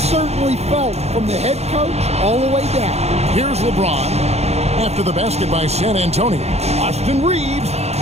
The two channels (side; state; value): left; late; 0.31 ms